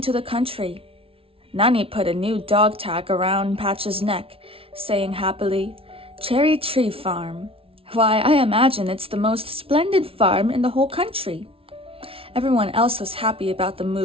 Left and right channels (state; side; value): late; left; 0.26 ms